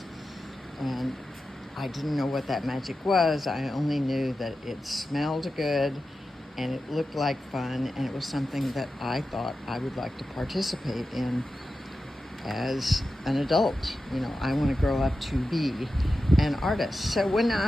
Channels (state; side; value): normal; both; correlation 0.92